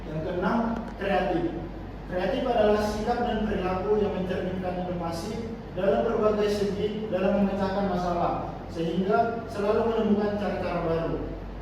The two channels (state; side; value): identical; both; correlation 1.00